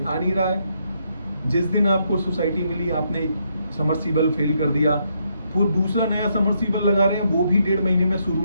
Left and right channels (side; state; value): both; inverted; correlation -0.76